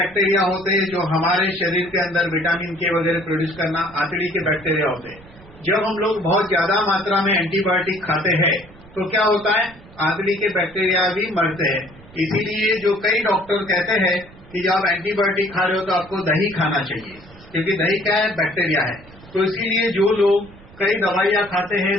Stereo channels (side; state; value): right; noise; rumble, 22 dB below the sound